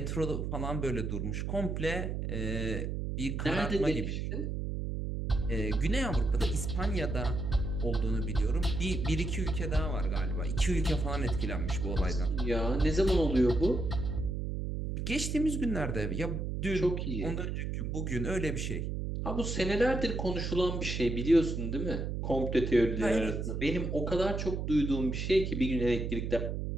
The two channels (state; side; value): noise; right; hum, 2 dB below the sound